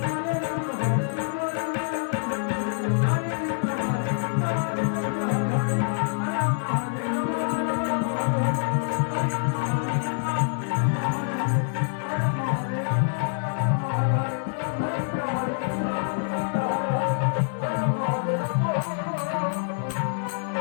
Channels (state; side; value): silent; right; 61 dB below the other